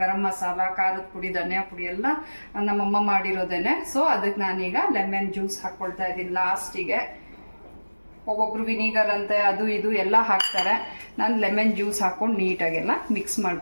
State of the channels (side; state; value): both; inverted; correlation -1.00